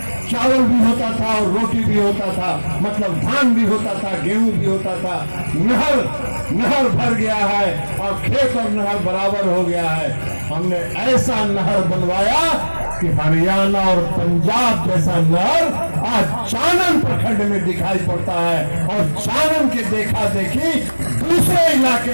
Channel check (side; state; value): both; inverted; correlation -1.00